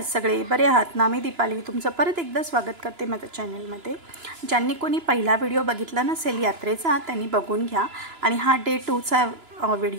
सगळे? बरे आहात ना? मी दीपाली तुमचं परत एकदा स्वागत करते माझ्या चॅनलमध्ये. ज्यांनी कोणी पहिला व्हिडिओ बघितला नसेल यात्रेचा त्यांनी बघून घ्या. आणि हा डे 2चा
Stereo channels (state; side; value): late; left; 2.9 ms